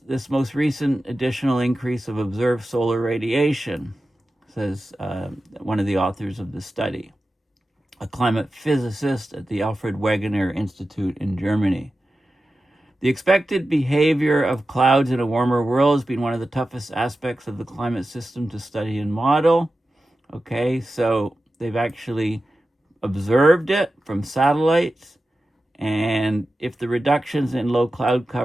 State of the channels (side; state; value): both; normal; correlation 0.93